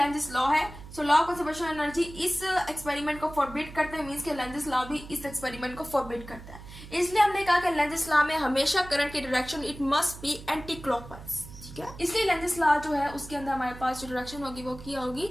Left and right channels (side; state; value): right; noise; hum, 15 dB below the sound